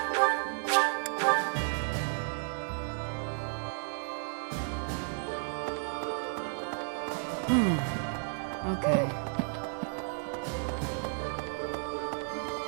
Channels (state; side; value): silent; left; 56 dB below the other